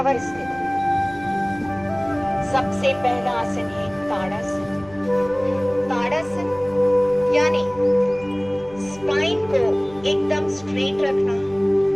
स्थिति, सबसे पहला आसन है ताड़ासन। ताड़ासन यानी स्पाइन को एकदम स्ट्रेट रखना।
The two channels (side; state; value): left; noise; rumble, 22 dB below the sound